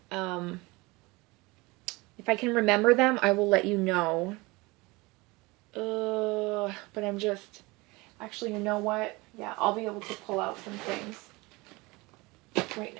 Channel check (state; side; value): quieter; left; 23.7 dB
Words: If I can remember them, I will let you know. But I'm just... Actually, you know what? Yeah, I'll be able to pull out some things right